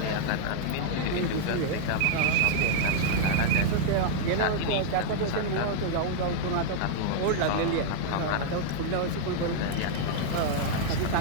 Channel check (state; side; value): different; both; correlation 0.00